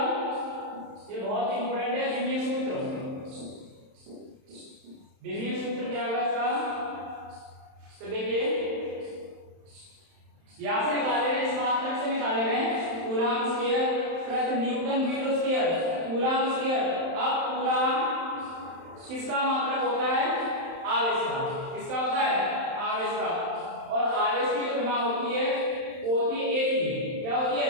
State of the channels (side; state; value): left; late; 31 ms